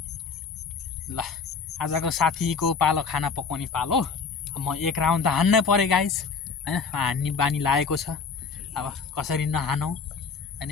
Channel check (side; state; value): right; quieter; 5.2 dB